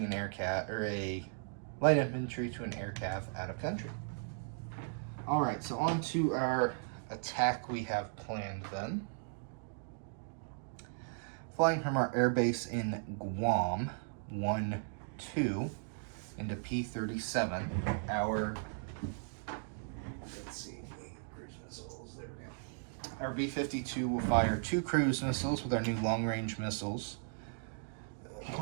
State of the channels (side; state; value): left; silent; digital silence